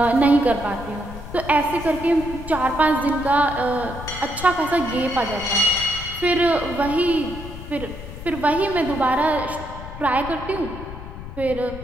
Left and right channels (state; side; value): noise; left; rumble, 11 dB below the sound